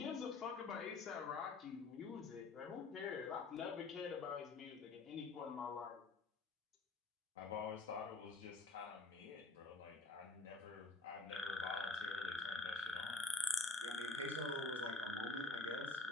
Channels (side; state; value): right; quieter; 3.5 dB